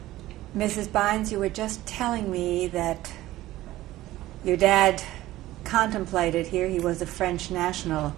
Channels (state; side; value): quieter; left; 16.1 dB